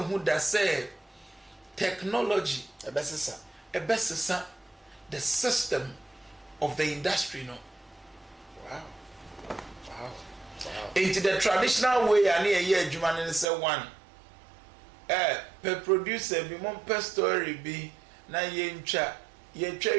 hu da say technology ebesesa the system of the industry no. Wow. Into the traditional way and here adwuma ne say one per producer bi mon per story bi na ye ntwa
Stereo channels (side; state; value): left; drops out; at 13.5 s